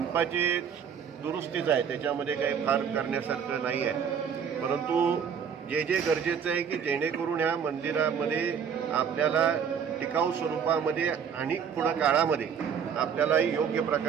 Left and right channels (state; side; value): quieter; left; 7.4 dB